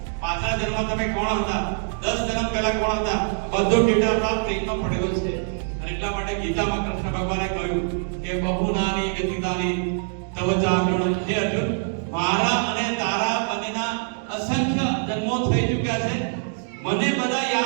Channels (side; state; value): left; silent; 63 dB below the other